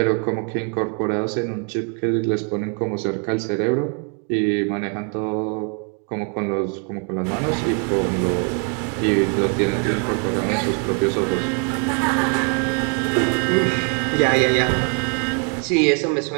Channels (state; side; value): quieter; left; 39.6 dB